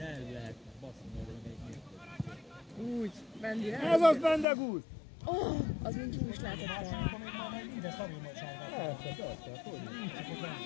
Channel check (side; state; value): right; drops out; at 4.5 s